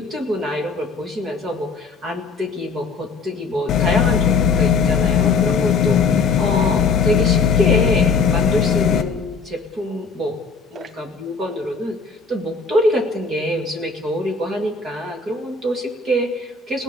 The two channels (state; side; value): quieter; right; 4.6 dB